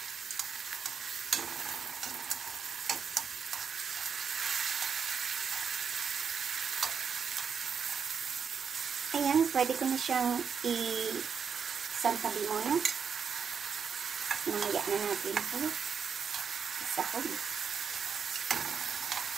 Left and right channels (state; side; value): quieter; left; 6.5 dB